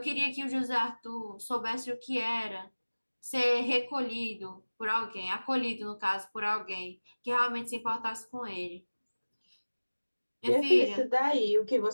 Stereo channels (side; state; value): both; inverted; correlation -1.00